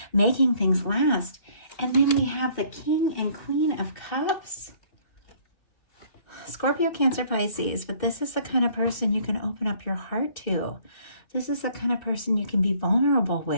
making things last. And then we have the King and Queen of Cups. Scorpio, Cancer, Pisces, but this is the kind of person you can open up your heart to. This is the kind of person you can be vulnerable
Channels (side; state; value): right; late; 2.7 ms